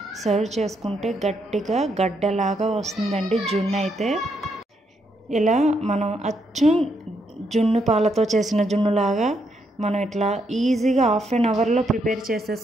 సర్వ్ చేసుకుంటే గట్టిగా గడ్డలాగా వస్తుందండి జున్ను అయితే. ఇలా మనం అచ్చం జున్ను పాలతో చేసిన జున్నులాగా మనం ఇట్లా ఈజీగా 1/2 అవర్లో ప్రిపేర్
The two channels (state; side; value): normal; both; correlation 0.77